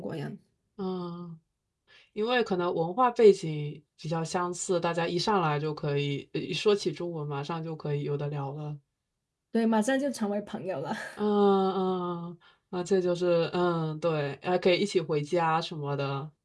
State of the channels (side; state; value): both; identical; correlation 1.00